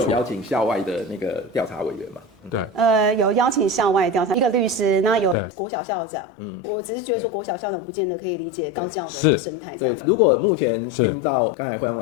邀請校外的那個調查委員嘛。對，有邀請校外調查一個律師，那有國小校長。我只是覺得說國小校長不見得可以理解高教的一個生態這樣子。如果目前聽到剛才惠陽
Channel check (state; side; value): drops out; right; at 5.4 s